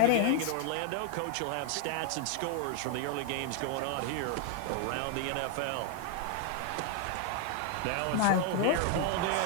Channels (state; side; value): different; both; correlation 0.00